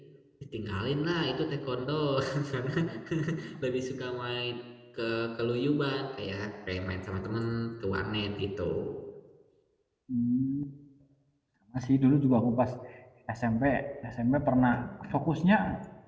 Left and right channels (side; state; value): both; identical; correlation 1.00